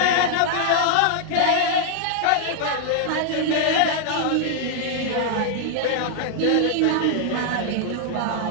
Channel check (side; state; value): both; different; correlation -0.01